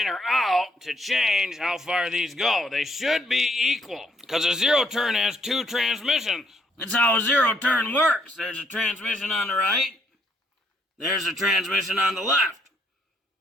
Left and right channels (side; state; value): both; normal; correlation 0.70